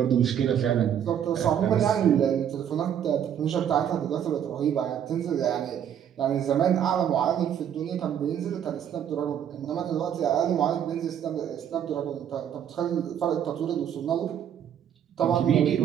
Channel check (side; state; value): left; quieter; 9.3 dB